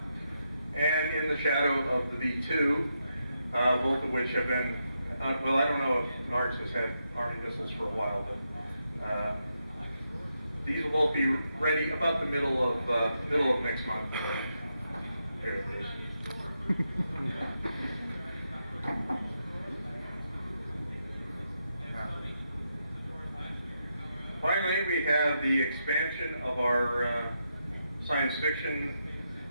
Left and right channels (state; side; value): inverted; both; correlation -0.84